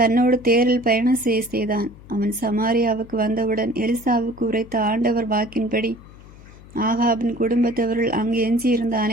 தேரில் பயணம் செய்தான். அவன் சமாரியாவுக்கு வந்தவுடன் எலிசாவுக்கு உரைத்த ஆண்டவர் வாக்கின்படி ஆகாபின் குடும்பத்தவர்கள் அங்கு எஞ்சியிருந்த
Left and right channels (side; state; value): left; noise; hum, 20 dB below the sound